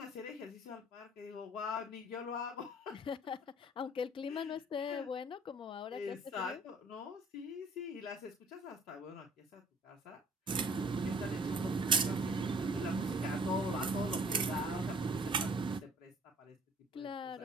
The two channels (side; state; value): both; normal; correlation 0.54